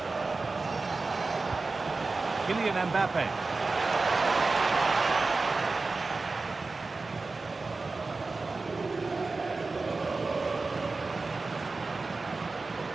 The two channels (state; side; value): quieter; left; 3.8 dB